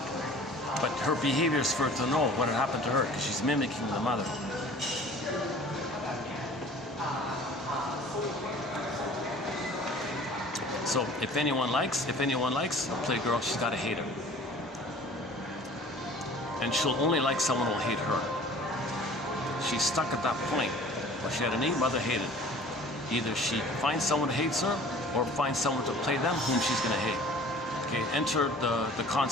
But her behavior is for her to know what had happened to her, because she's mimicking the mother. So if anyone likes a playgirl, she's got to hate her. And she'll only like someone who'll hate her. She's stuck at that point where she had a neat mother hated. Either she finds someone who hates her, or finds someone to play them whom she's going to hate. Okay, enter the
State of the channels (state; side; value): normal; both; correlation 0.47